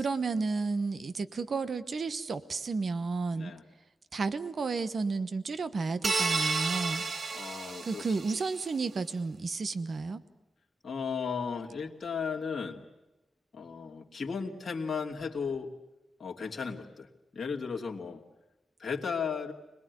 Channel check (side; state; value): both; normal; correlation 0.85